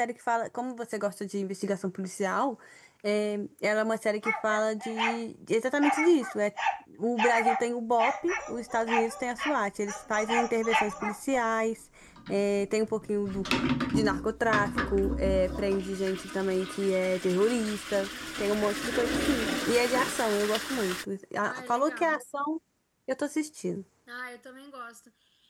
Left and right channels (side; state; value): both; identical; correlation 1.00